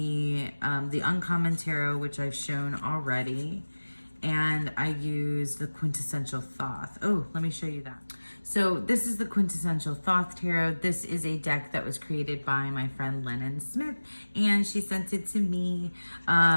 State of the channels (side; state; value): both; inverted; correlation -1.00